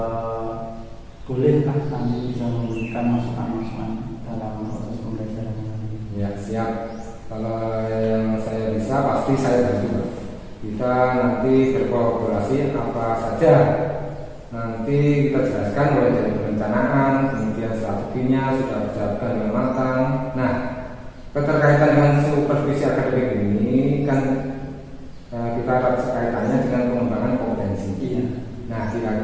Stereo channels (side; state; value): both; identical; correlation 1.00